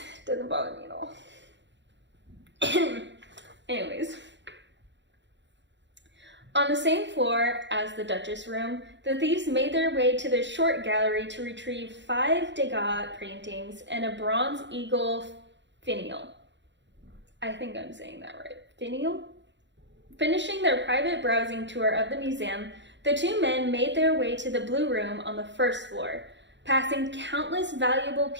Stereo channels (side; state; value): left; late; 0.52 ms